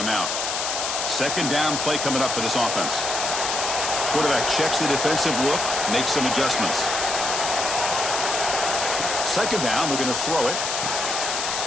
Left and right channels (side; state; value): left; noise; hiss, 2 dB below the sound